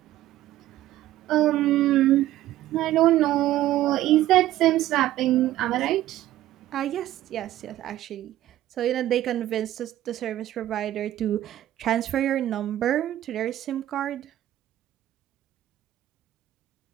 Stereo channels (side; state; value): left; quieter; 14.0 dB